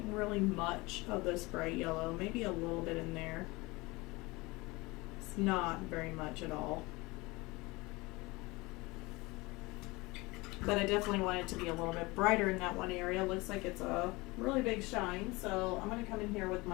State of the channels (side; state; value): right; quieter; 23.4 dB